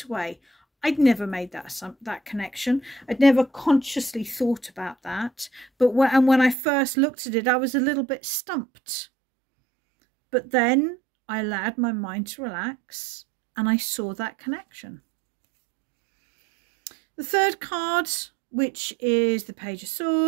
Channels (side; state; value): left; drops out; at 6.6 s